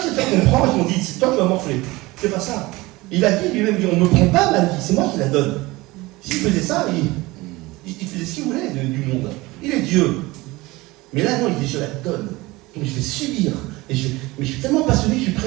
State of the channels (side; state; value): left; quieter; 21.0 dB